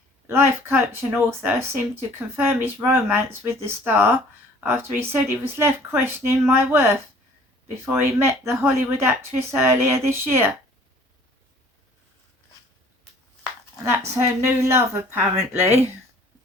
life coach and author seemed to confirm his romance with the star after he said he was left questioning my worth before he met the Hollywood actress earlier this year. And that's her new love, apparently.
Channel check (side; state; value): both; normal; correlation 0.53